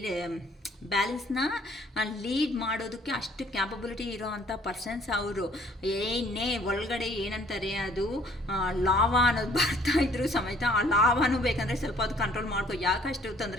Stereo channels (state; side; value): normal; both; correlation 0.60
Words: ಬ್ಯಾಲೆನ್ಸ್ನ ಲೀಡ್ ಮಾಡೋದಕ್ಕೆ ಅಷ್ಟು ಕ್ಯಾಪಬಿಲಿಟಿ ಇರೋ ಅಂಥ ಪರ್ಸನ್ಸ್ ಅವರು. ಒಳಗಡೆ ಏನಂತಾರೆ ಅದು ಲಾವಾ ಅನ್ನೋದು ಬರ್ತಾ ಇದ್ರು ಸಮೇತ ಆ ಲಾವಾನು ಬೇಕಂದರೆ ಸ್ವಲ್ಪ ಅದು ಕಂಟ್ರೋಲ್ ಮಾಡ್ಕೊ. ಯಾಕಷ್ಟು